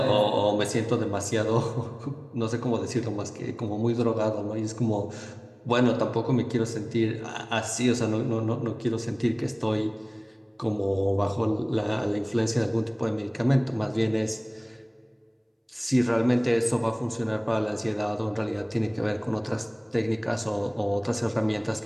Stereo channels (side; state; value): both; identical; correlation 1.00